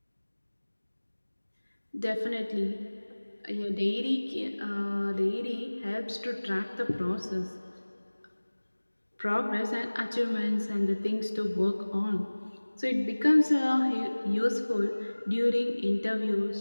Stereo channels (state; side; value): inverted; both; correlation -1.00